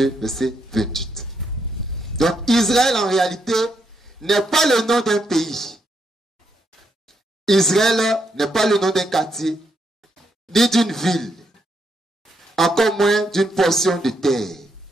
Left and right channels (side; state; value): both; normal; correlation 0.78